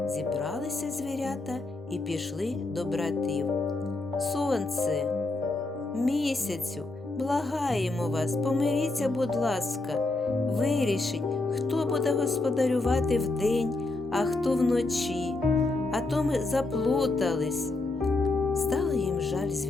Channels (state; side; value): quieter; right; 3.1 dB